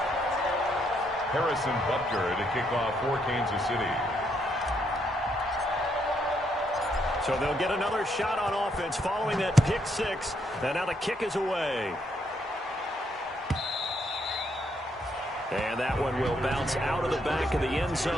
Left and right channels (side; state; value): both; normal; correlation 0.75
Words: Harrison Butker to kick off for Kansas City. So they'll get another shot on offense following that pick 6. And now the kick is away. And that one will bounce out of the back of the end